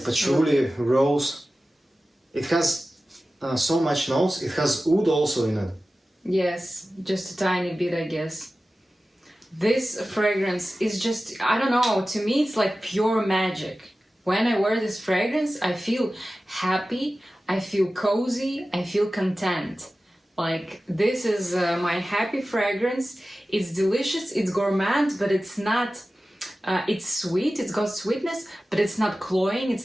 patchouli, rose. It has so much notes. It has oud also in it. Yes, just a tiny bit, I guess. This fragrance is just, I don't know, to me it's like pure magic. When I wear this fragrance, I feel happy, I feel cozy, I feel content. Like, this is my happy fragrance. It's delicious, it's gourmand, but it's not, it's sweet, it's got sweetness, but it's not cloying,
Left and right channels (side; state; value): both; normal; correlation 0.95